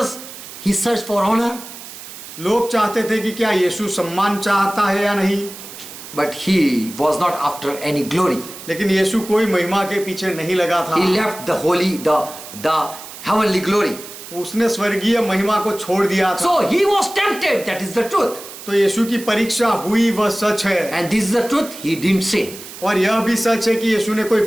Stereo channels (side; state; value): right; noise; hiss, 14 dB below the sound